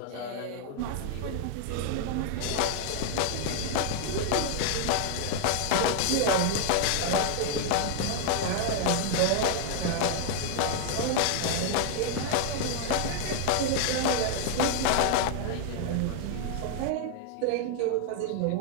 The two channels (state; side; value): different; both; correlation 0.00